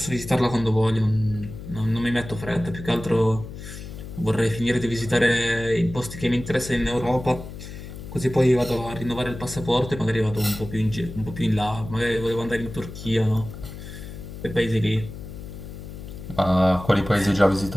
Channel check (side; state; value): left; noise; hum, 11 dB below the sound